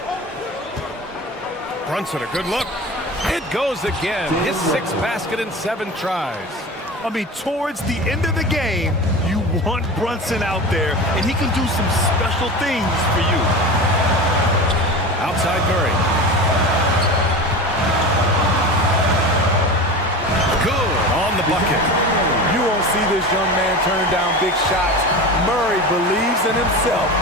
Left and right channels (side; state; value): both; normal; correlation 0.30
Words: Brunson, a good look. It goes again. His 6th basket in 7 tries. I mean, towards the end of the game, you want Brunson out there, and he can do some special things for you. Outside Murray. Good on the bucket. You won't see this young man turn down big shots. Murray believes in himself,